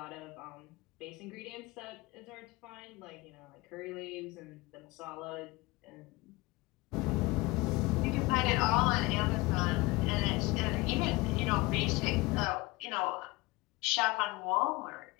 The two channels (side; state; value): right; quieter; 22.7 dB